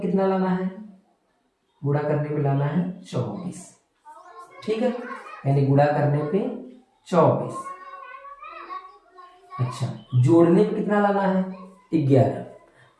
लाना है, गुणा करने पे लाना है 24, ठीक है, यानी गुणा करने पे 24। अच्छा जोड़ने पे कितना लाना है, 11,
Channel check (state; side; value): identical; both; correlation 1.00